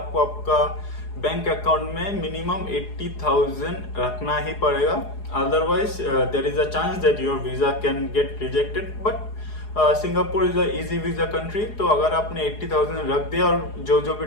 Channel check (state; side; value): late; right; 4.8 ms